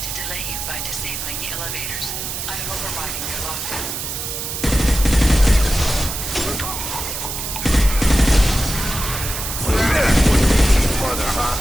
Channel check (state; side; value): noise; right; hiss, 5 dB below the sound